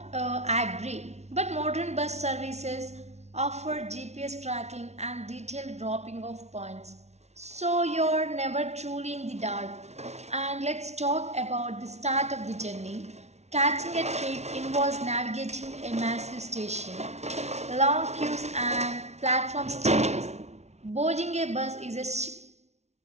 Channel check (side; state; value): left; late; 0.32 ms